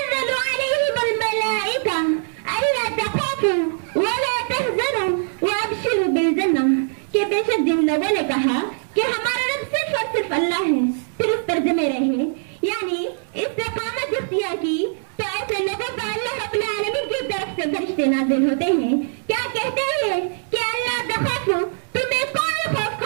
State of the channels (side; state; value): left; silent; digital silence